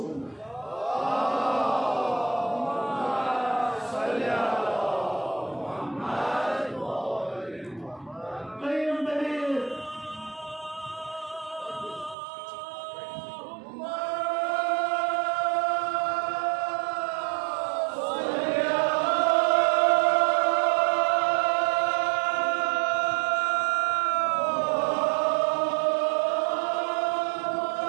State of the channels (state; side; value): drops out; left; at 12.2 s